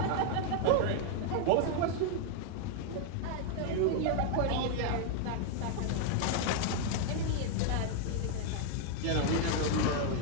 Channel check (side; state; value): both; different; correlation 0.00